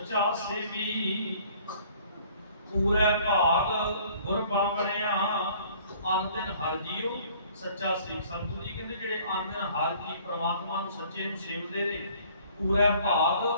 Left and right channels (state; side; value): inverted; both; correlation -0.55